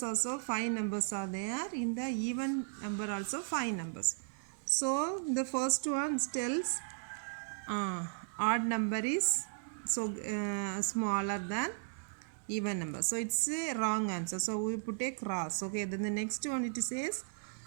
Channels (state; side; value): silent; left; digital silence